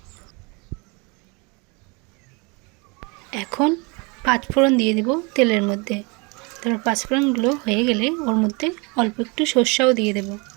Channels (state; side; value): quieter; left; 29.6 dB